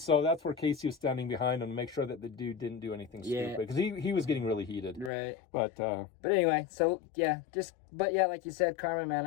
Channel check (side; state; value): right; drops out; at 5.1 s